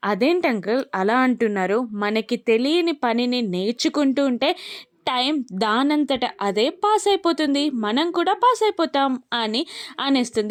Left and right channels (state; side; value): identical; both; correlation 1.00